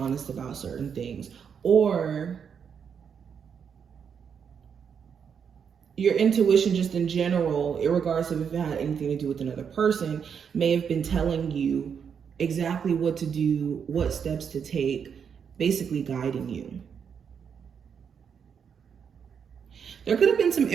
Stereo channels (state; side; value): quieter; left; 7.1 dB